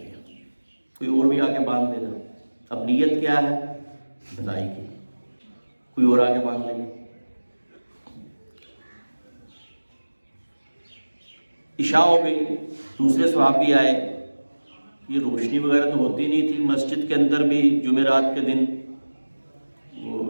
ہیں، کوئی اور بھی آگے باندھ دینا۔ اب نیت کیا ہے؟ بھلائی کی، کوئی اور آگے باندھ لیں گے۔ عشاء ہو گئی، دوسرے صحابی آئے، یہ روشنی وغیرہ تو ہوتی نہیں تھی، مسجد کے اندر بھی جمعرات کے دن وہ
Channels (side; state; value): both; inverted; correlation -1.00